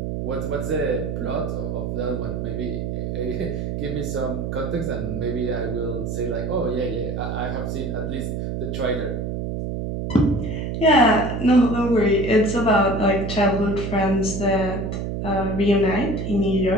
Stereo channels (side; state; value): right; noise; hum, 3 dB below the sound